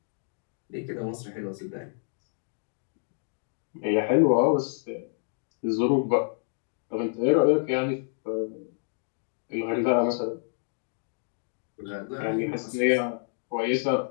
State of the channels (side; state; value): right; silent; digital silence